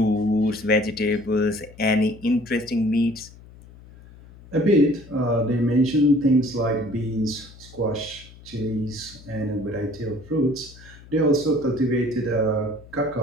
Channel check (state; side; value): noise; left; hum, 21 dB below the sound